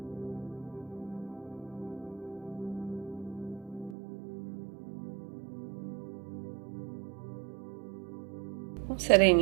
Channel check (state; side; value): drops out; left; at 4.0 s